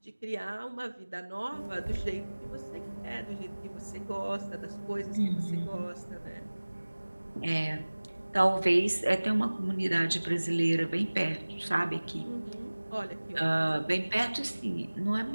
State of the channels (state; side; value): inverted; both; correlation -1.00